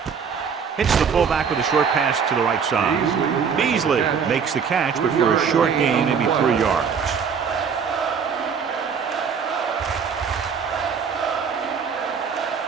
Hits the fullback with a short pass to the right side. Beasley makes the catch, but for a short gain, maybe 3 yards.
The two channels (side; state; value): left; quieter; 6.5 dB